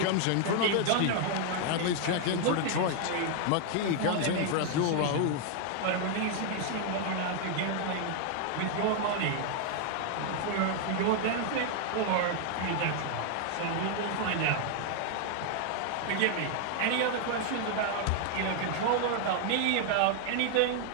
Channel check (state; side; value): different; both; correlation 0.00